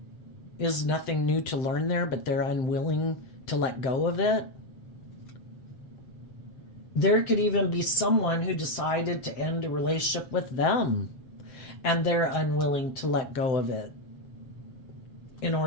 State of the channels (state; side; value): late; right; 7.7 ms